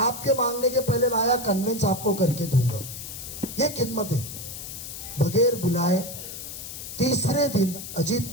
मांगने के पहले लाया, कन्वेंस आपको करके दूंगा। ये खिदमत है। बगैर बुलाए तीसरे दिन अजीत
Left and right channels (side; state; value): left; noise; hiss, 10 dB below the sound